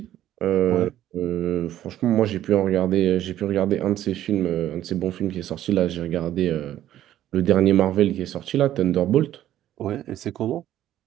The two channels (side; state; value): left; quieter; 12.5 dB